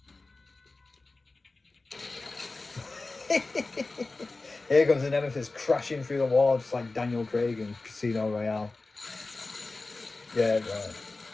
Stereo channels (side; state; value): right; quieter; 3.4 dB